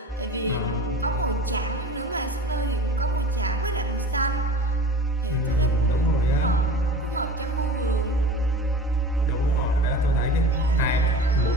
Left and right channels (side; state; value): both; normal; correlation 0.37